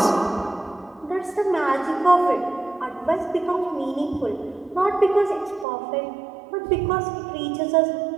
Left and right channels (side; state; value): left; drops out; at 5.7 s